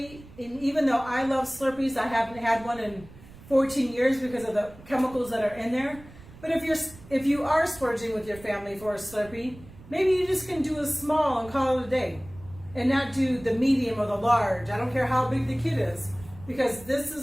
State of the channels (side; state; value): right; noise; rumble, 20 dB below the sound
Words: and even though I love Slurpees, I haven't had one in 14 years because of the chemicals that are in there. But if you are splurging with your family for a Slurpee, maybe you just can do a small and call it a day, and not do the medium or the large. I don't care how big the kid is, because this